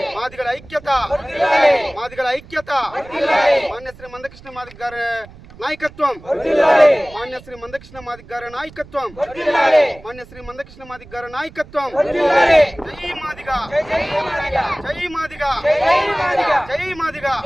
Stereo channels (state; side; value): noise; right; rumble, 21 dB below the sound